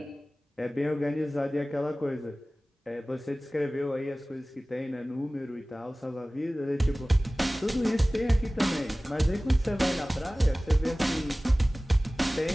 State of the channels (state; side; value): normal; both; correlation 0.98